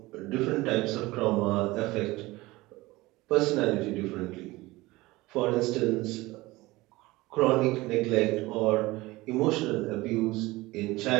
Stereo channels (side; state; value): left; quieter; 20.2 dB